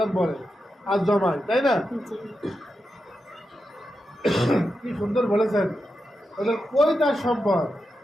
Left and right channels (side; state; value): both; normal; correlation 0.88